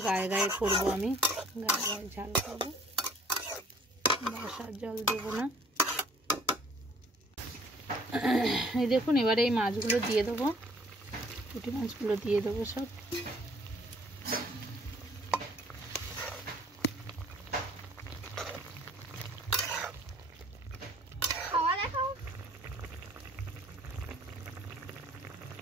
গায়ে গায়ে করবো আমি, গায়ে গায়ে ঝাল করবো, বাসার জল দেবো না। এই দেখুন এবারে এই মাছগুলো দিয়ে দেবো, পুঁটি মাছগুলো দিয়ে দেবো সব।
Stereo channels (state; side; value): normal; both; correlation 0.57